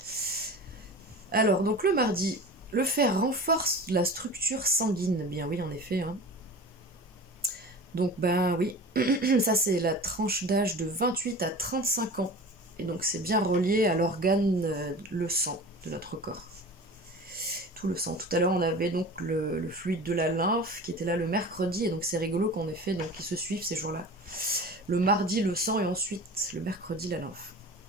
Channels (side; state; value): both; normal; correlation 0.36